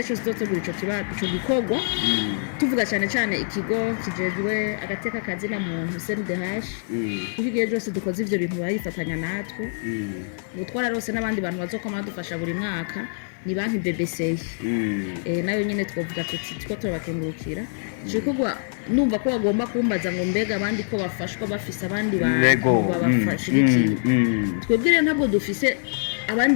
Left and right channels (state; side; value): silent; right; 62 dB below the other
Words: cyose tuzotegura ico gikorwa tuvuga cyane ikigo kijejwe agateka kazi na muntu CNDH kugiye cyose dukoze ivyo bintu bayifatanya natwe ubutwara rose n'abandi bantu bazokoma badufasha buri mwaka ni banki BBC nayo nyene twovuga tuti ko turabakengurukira gikorwa numva ko bagomba kumbaza ngo mbega abandi ko bafashwa bafise abandi bantu babafashigikiye twebwe rero ntabwo dufise